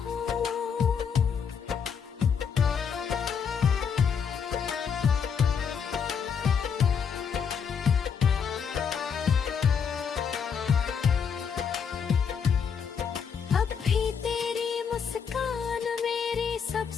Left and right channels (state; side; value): quieter; right; 6.8 dB